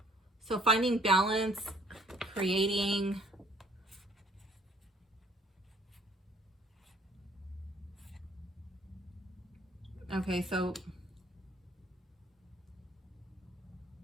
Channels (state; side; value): normal; both; correlation 0.59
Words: So finding balance, creating, okay, so